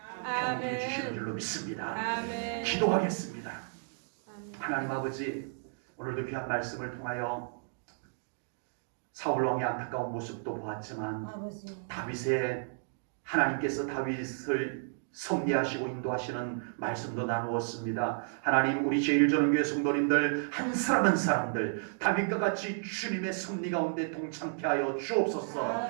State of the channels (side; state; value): left; silent; digital silence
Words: 경험해 주시는 줄로 믿습니다. 기도하겠습니다. 하나님 아버지, 오늘도 귀한 말씀을 통하여 사울왕의 안타까운 모습도 보았지만 다윗의 하나님께서 다윗을 섭리하시고 인도하시는 말씀도 나누었습니다. 하나님, 우리 제1전원교회 성도님들 한 사람 한 사람들 다윗과 같이 주님의 섭리 가운데 동참케 하여 주옵소서.